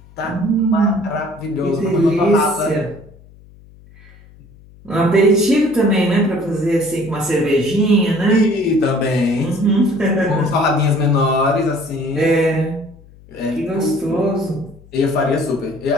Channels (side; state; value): left; noise; hum, 24 dB below the sound